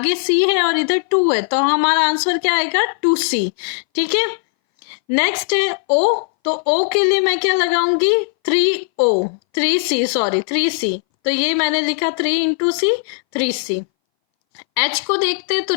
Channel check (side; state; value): right; silent; 62 dB below the other